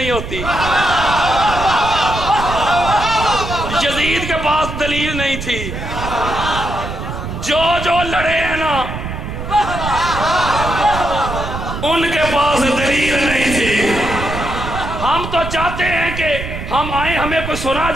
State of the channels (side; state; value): right; noise; rumble, 7 dB below the sound